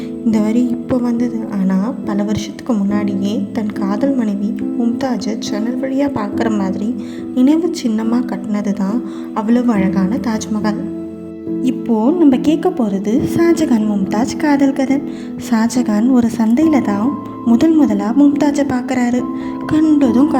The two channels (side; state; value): both; identical; correlation 1.00